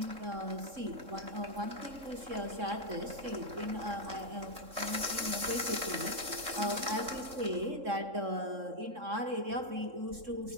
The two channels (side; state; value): left; late; 3.7 ms